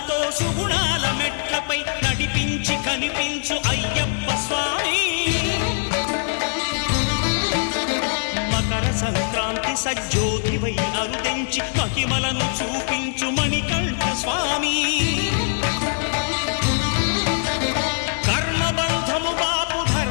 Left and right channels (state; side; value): silent; right; 64 dB below the other